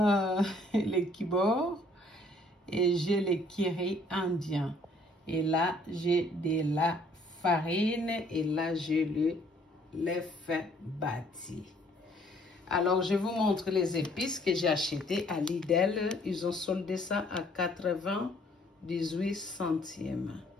les kibor et j'ai le curry indien. Et là, j'ai de la farine et là, j'ai le l'œuf bâti. Alors, je vous montre les épices que j'ai achetées à Lidl. Ils ont soldé ça à 98 centimes.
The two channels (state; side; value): normal; both; correlation 0.61